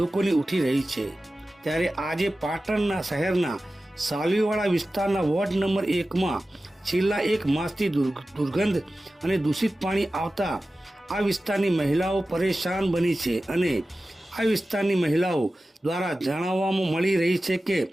ઉઠી રહી છે। ત્યારે આજે પાટણના શહેરના સાલવીવાડા વિસ્તારના વોર્ડ નંબર 1માં છેલ્લા 1 માસથી દુર્ગંધ અને દૂષિત પાણી આવતા આ વિસ્તારની મહિલાઓ પરેશાન બની છે અને આ વિસ્તારની મહિલાઓ દ્વારા જણાવવામાં મળી રહી છે કે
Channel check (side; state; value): both; normal; correlation 0.95